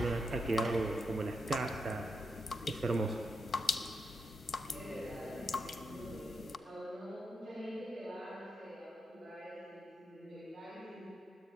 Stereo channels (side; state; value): both; normal; correlation 0.84